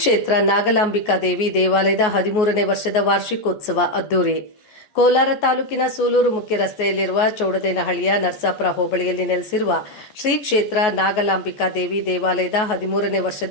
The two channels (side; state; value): right; late; 14 ms